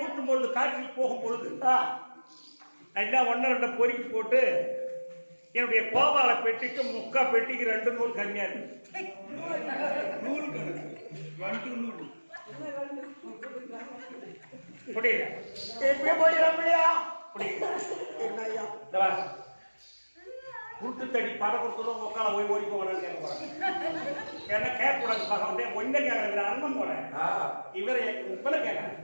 பொழுது காற்றில் போகும் பொழுது எல்லாம் 1-2 பொறுக்கி போட்டு என்னுடைய கோபால பெட்டிக்கு முக்கா பெட்டிக்கு 2 நூல் கம்மியா இருக்கு. நூல் கணக்கு 2 நூல் புரியல. எப்படி போயிடலாம் இல்லையா? புரியல. என்ன ஐயா? இந்த வா. குருட்டு தடி பட கொடுத்ததும் உட்கால போய் ஓடி போகிறான்னு கேட்க போறேன். ஏன்னா கேட்கக்கூடாது பார்க்க ஒன்றை கேட்கறது அண்ணன் போறேன். இவரை இப்பல கேட்கறேன்.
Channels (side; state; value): both; inverted; correlation -1.00